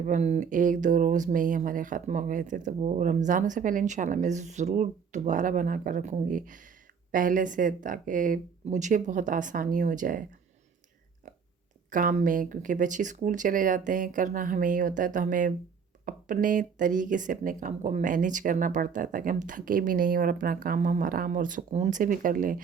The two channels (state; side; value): quieter; left; 6.3 dB